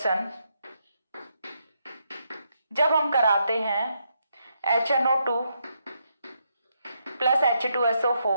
जब हम कराते हैं HNO2 प्लस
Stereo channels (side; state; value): both; inverted; correlation -0.79